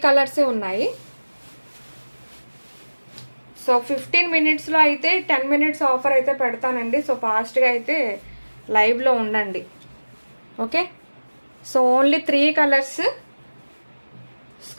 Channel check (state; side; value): inverted; both; correlation -1.00